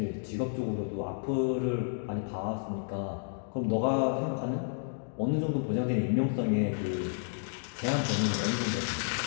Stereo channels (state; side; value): silent; right; digital silence